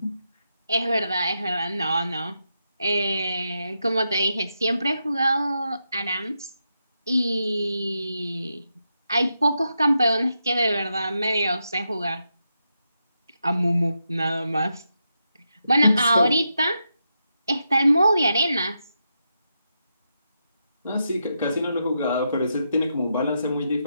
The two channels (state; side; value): inverted; both; correlation -0.85